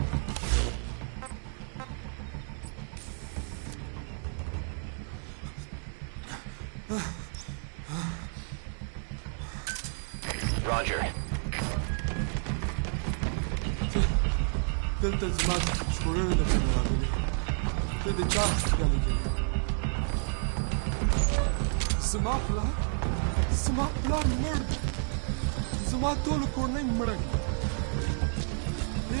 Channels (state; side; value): silent; left; 57 dB below the other